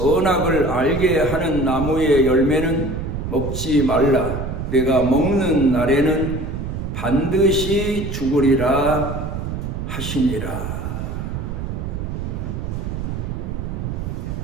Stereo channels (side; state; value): right; noise; rumble, 5 dB below the sound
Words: 알게 하는 나무의 열매는 먹지 말라. 내가 먹는 날에는 반드시 죽으리라 하시니라.